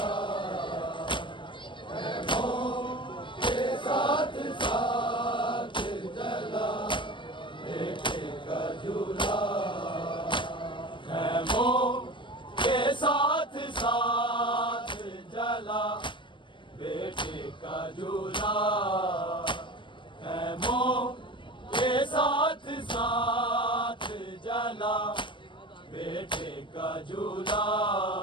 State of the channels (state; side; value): late; right; 0.24 ms